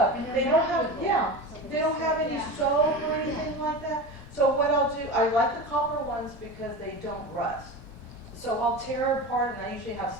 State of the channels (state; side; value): normal; both; correlation 0.28